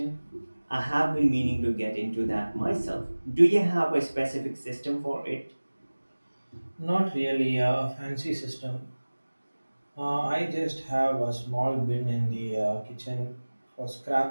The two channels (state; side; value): inverted; both; correlation -1.00